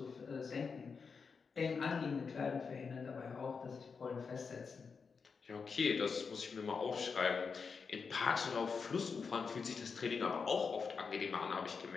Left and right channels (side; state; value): right; quieter; 5.4 dB